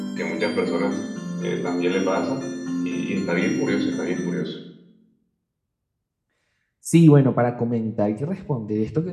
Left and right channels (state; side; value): identical; both; correlation 1.00